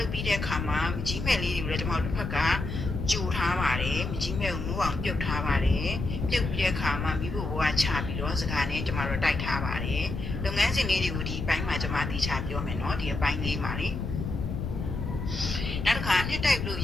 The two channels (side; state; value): left; noise; rumble, 4 dB below the sound